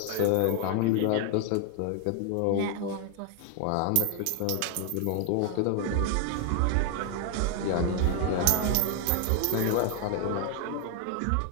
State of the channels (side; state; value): both; different; correlation 0.00